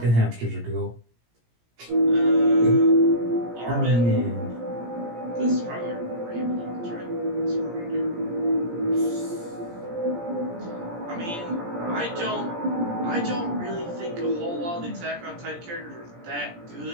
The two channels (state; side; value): late; left; 17 ms